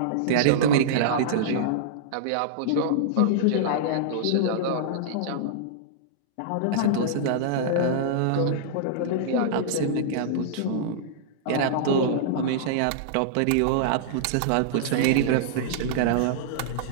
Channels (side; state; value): both; different; correlation -0.02